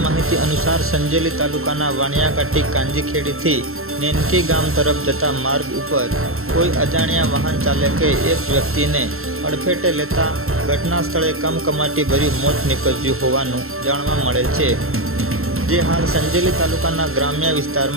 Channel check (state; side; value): late; left; 0.62 ms